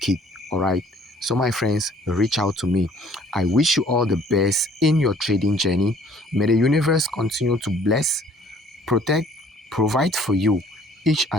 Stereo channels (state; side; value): normal; both; correlation 0.57